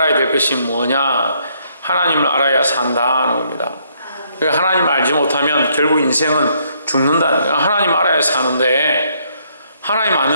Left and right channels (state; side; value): inverted; both; correlation -0.70